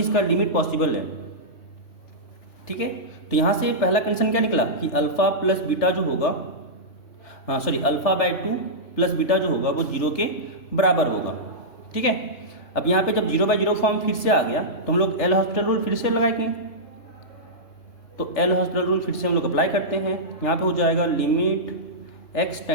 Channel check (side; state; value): right; late; 3.4 ms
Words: लिमिट पॉसिबल है। ठीक है, तो यहाँ से पहला कंडीशन क्या निकला कि अल्फा प्लस बीटा जो होगा, α/2 प्लस बीटा जो होगा वो 0 के बराबर होगा। ठीक है, अब यहाँ पे जब 0/0 फॉर्म फिर से आ गया तो हम लोग एल हॉस्पिटल रूल फिर से लगाएंगे, तो एल हॉस्पिटल रूल फिर से हम लोग अप्लाई करते हैं। यहाँ पे हो जाएगा लिमिट x